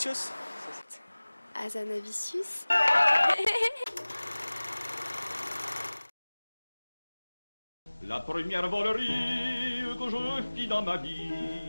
Azanavicius. La première volerie que je fis dans ma vie,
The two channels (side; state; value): both; inverted; correlation -1.00